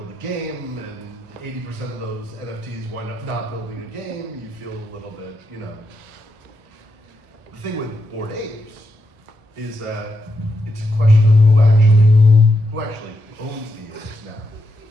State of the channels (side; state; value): left; late; 1.2 ms